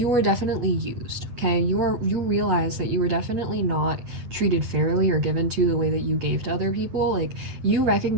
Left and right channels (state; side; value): late; left; 8.8 ms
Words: used, okay? You realized that you were definitely not treated fairly or given to the way that you gave to other people. Like, you